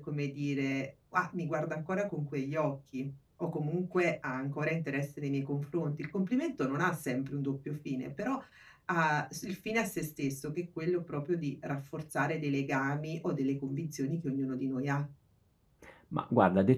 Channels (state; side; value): identical; both; correlation 1.00